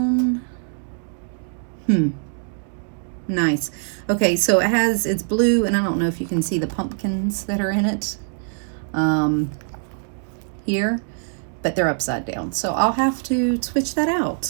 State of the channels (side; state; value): left; silent; 63 dB below the other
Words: Nice. Okay, so it's blue, and I don't know if you can see the pumpkins that are in it here, but they're upside down. So I'll have to switch that